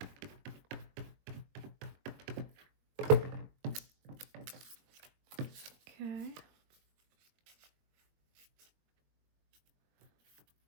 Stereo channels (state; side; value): late; left; 21 ms